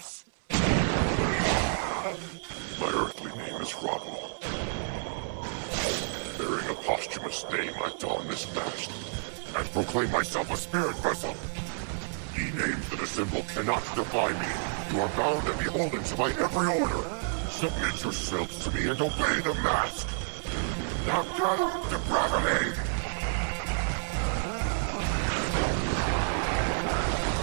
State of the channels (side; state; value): left; silent; digital silence